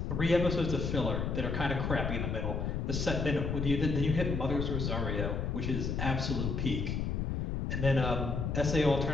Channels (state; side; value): noise; left; rumble, 1 dB below the sound